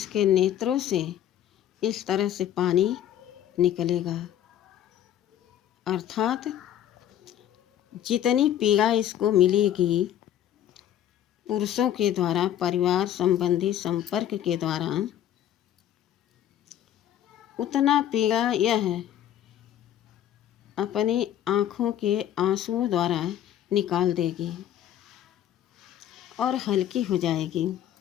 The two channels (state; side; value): quieter; right; 11.1 dB